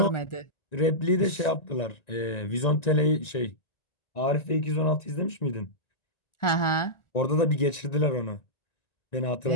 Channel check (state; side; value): late; right; 1.9 ms